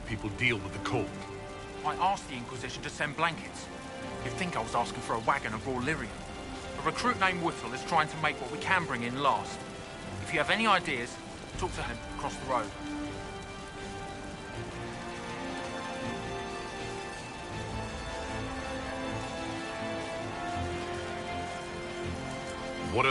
people deal with the cold? I asked the Inquisition to send blankets. You'd think I was asking for a wagon of raw lyrium. A recruit named Whittle is trying to make what we can bring in last. If you have any ideas, talk to him across the road. What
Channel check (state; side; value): identical; both; correlation 1.00